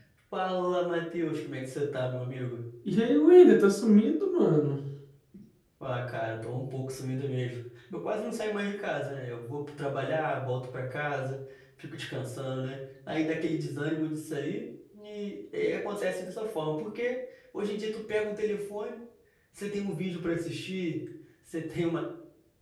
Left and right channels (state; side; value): identical; both; correlation 1.00